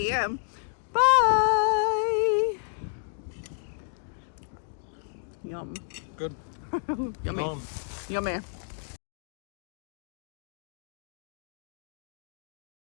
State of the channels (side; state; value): right; silent; digital silence